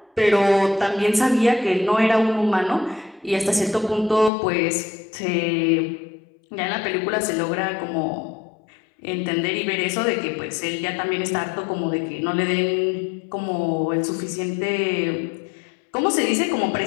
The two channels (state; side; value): drops out; right; at 4.3 s